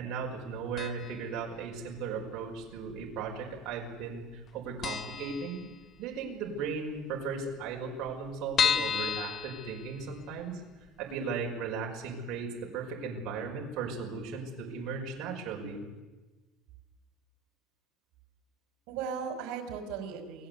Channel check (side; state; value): both; normal; correlation 0.40